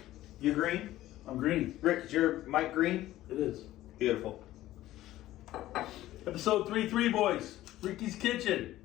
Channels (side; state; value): right; quieter; 15.0 dB